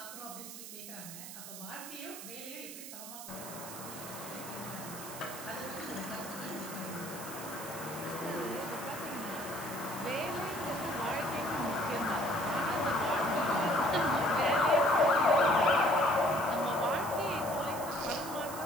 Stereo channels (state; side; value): noise; right; hiss, 11 dB below the sound